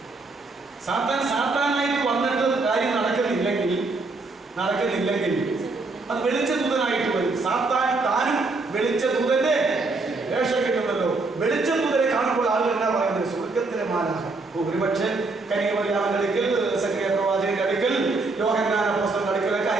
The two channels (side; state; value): left; quieter; 3.6 dB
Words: സാത്താനായിട്ട് വന്നിട്ട് കാര്യം നടക്കുന്നില്ലെങ്കിൽ അത് വെളിച്ചദൂതനായിട്ട് വരും. താനും വെളിച്ചദൂതന്റെ വേഷം കിട്ടുമല്ലോ. വെളിച്ചദൂതനെ കാണുമ്പോൾ ആളുകൾ എന്നാ പറയുന്നത്? സ്വർഗത്തിലെ മാലാഖ. ഒരുപക്ഷെ കന്യകമറിയാമിന്റെ അടുക്കൽ, സക്കറിയ പ്രവാചകന്റെ അടുക്കൽ, യോഹന്നാൻ അപ്പോസ്തലന്റെ അടുക്കലൊക്കെ